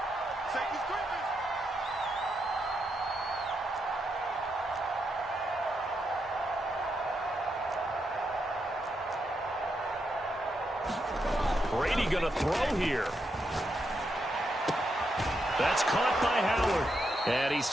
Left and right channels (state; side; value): normal; both; correlation 0.82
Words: Brady going to throw here. That's caught by Howard. And he's